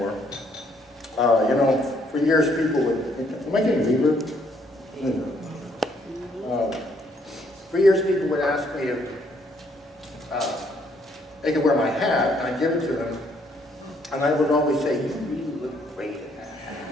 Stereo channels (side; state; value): both; normal; correlation 0.68